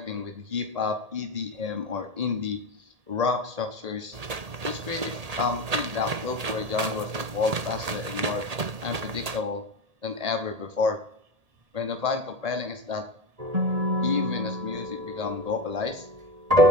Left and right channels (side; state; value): left; late; 1.8 ms